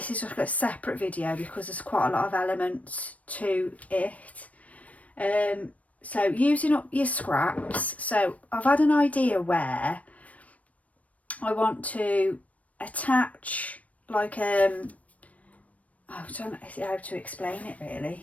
is just a separate video because there's quite a lot of elements to it. So using up your scraps, so I've had an idea where I want to attach like I don't know how to explain it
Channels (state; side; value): late; right; 0.068 ms